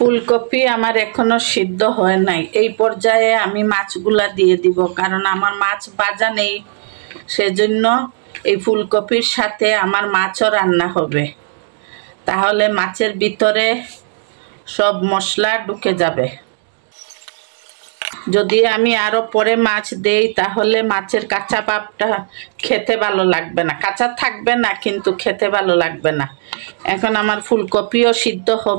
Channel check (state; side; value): silent; left; digital silence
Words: আমার এখনো সিদ্ধ হয় নাই। এই পর্যায়ে আমি মাছগুলা দিয়ে দিব, কারণ আমার মাছ ভাজা নেই। সেজন্য এই ফুলকপির সাথে আমার মাছও রান্না হবে। তাহলে মাছের ভিতরে সব মশলা ঢুকে যাবে। যদি আমি আরো পরে মাছ দেই তাহলে মাছের কাঁচা ভাবটা খেতে ভালো লাগবে না। কাঁচা থাকবে না, কিন্তু খেতে ভালো লাগবে না। এখন আমার ফুলকপিও সিদ্ধ